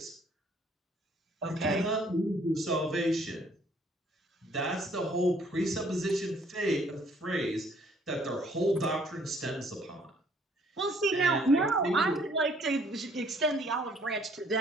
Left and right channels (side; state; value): both; normal; correlation 0.62